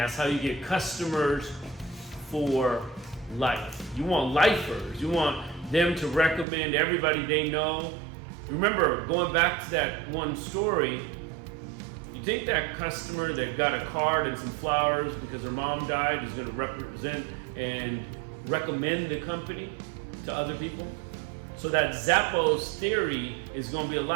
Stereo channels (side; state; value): left; drops out; at 6.5 s